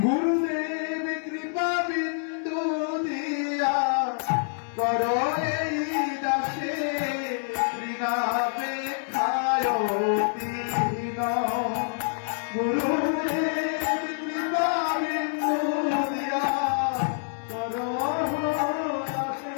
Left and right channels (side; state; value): right; silent; 60 dB below the other